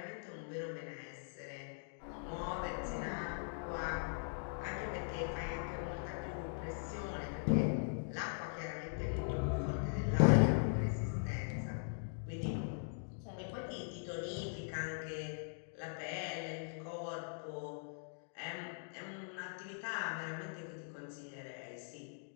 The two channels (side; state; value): right; silent; digital silence